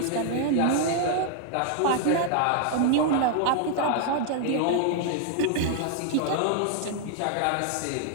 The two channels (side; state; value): both; different; correlation -0.01